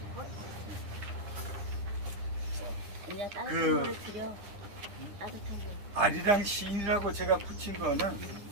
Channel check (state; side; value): late; left; 9.9 ms